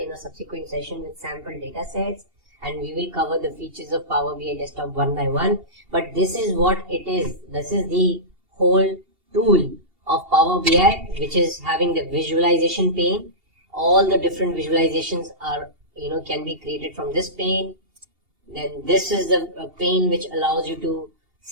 in a subsequent session with sample data sets, and we will cover the features of Power BI desktop one by one. But this is what it is. This is the whole tool of Power BI, which is having the visualization pane. All the different visualizations are can be created from this pane. Then this is the pane which allows you to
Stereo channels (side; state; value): left; late; 2.8 ms